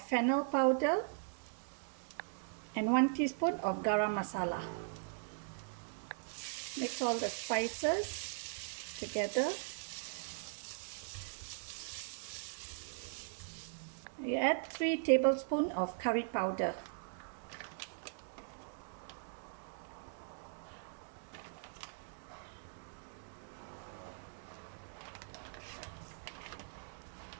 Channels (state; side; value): silent; left; digital silence